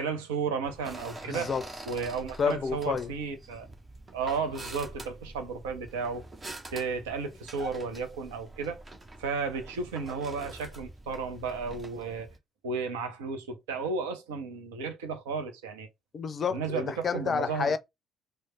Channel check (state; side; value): normal; both; correlation 0.32